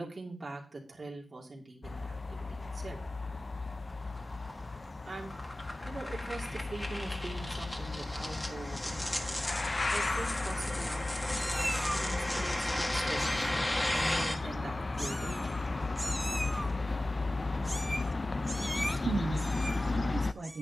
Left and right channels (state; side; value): normal; both; correlation 0.96